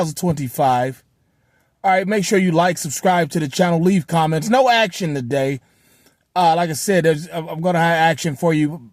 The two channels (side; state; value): both; identical; correlation 1.00